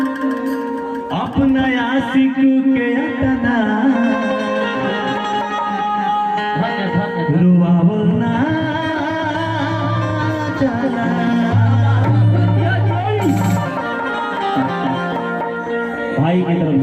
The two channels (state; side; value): identical; both; correlation 1.00